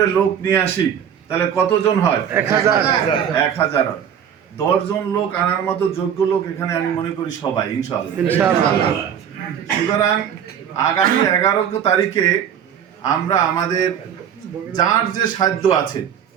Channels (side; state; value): left; quieter; 8.7 dB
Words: লোক নিয়ে আসি, তাহলে কতজন হয়? 1000। 10 জন লোক আনার মতো যোগ্য লোক এখানে আমি মনে করি সবাই, ইনশাআল্লাহ। সুতরাং আগামী 11 তারিখে আমরা আমাদের যার যে সাধ্য আছে